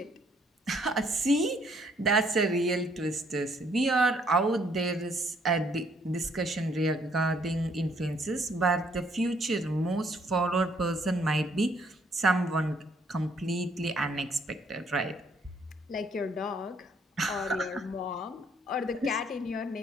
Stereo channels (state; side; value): normal; both; correlation 0.66